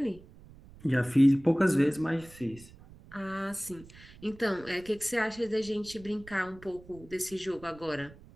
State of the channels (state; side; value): noise; right; rumble, 21 dB below the sound